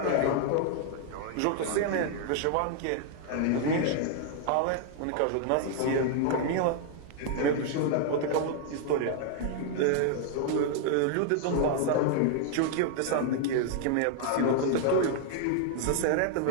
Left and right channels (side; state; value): both; different; correlation 0.00